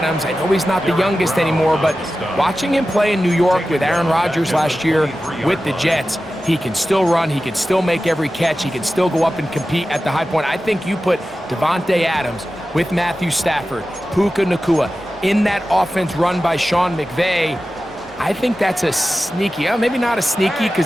I know he's not the youngest anymore, but watching him play in New York with Aaron Rodgers last year with the Jets, he can still run, he can still make every catch, he can still go up and compete at the high point. I think you put Davante Adams with Matthew Stafford, Puka Nacua, in that offense run by Sean McVay. I think that's a sneaky, maybe not a sneaky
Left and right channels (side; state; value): both; normal; correlation 0.94